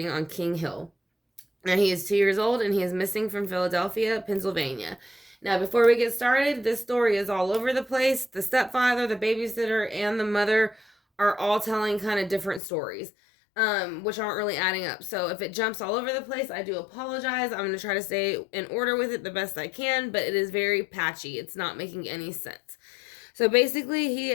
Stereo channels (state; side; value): drops out; right; at 12.6 s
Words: on King Hill. Now, he is 2 years old and he is missing from Philadelphia, Pennsylvania. Now, before we get started, this story is all over the place. The stepfather, the babysitter, and the mother are all telling kind of different stories, which aren't really adding up. So, if it jumps all over the place, I do apologize. I'm going to try to stay in order with it the best I can, but it is very patchy. It's not making any sense. So basically, he